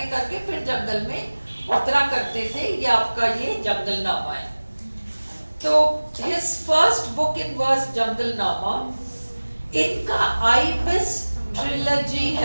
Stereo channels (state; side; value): inverted; both; correlation -1.00